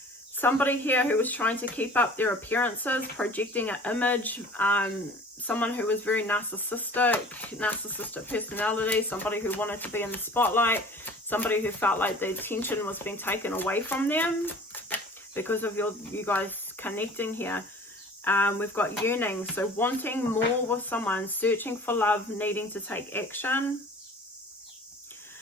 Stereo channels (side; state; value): both; normal; correlation 0.45